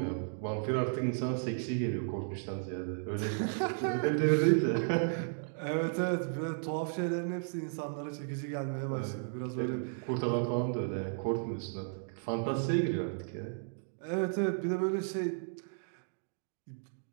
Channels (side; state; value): left; silent; digital silence